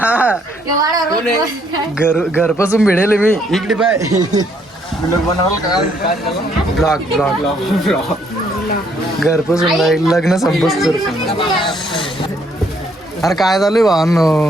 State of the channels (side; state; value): both; normal; correlation 0.68